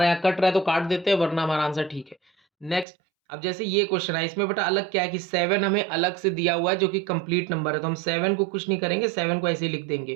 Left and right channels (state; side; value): drops out; left; at 2.9 s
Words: यहाँ कट रहा है तो काट देते हैं, वरना हमारा आंसर ठीक है। नेक्स्ट, अब जैसे ये क्वेश्चन है, इसमें बेटा अलग क्या है कि 7 हमें अलग से दिया हुआ है जो कि कंप्लीट नंबर है, तो हम 7 को कुछ नहीं करेंगे, 7 को ऐसे ही लिख देंगे।